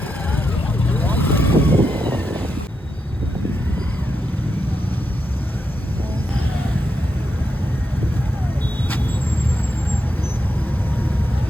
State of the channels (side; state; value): both; normal; correlation 0.84